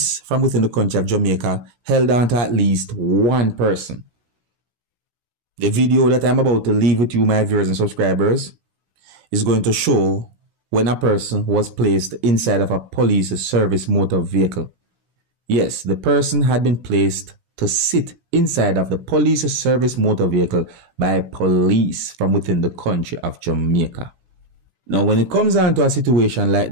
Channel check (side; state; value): left; late; 17 ms